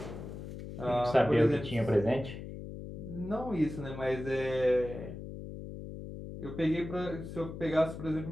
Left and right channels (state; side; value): noise; left; hum, 10 dB below the sound